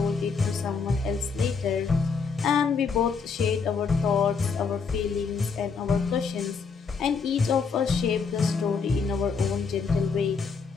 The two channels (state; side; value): quieter; right; 5.3 dB